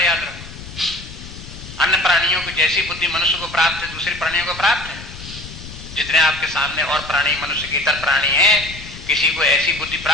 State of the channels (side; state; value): left; noise; rumble, 14 dB below the sound